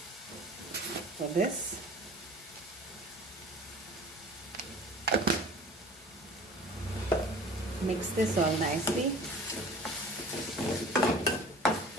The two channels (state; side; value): normal; both; correlation 0.43